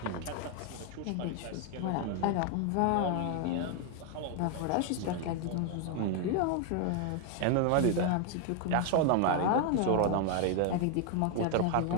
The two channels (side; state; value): both; different; correlation 0.01